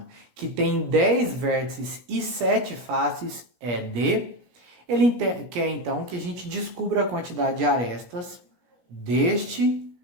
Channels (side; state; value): left; late; 17 ms